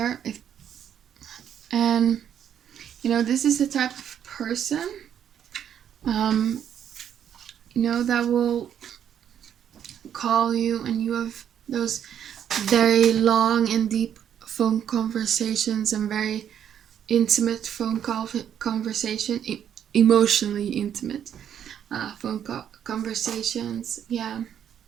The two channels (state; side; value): quieter; left; 9.3 dB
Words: this is the type of person that will call you, and you have those very long and deep phone conversations and very intimate phone conversation, emotionally intimate phone conversations.